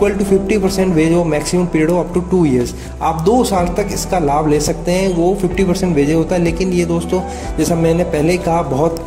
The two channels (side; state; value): both; identical; correlation 1.00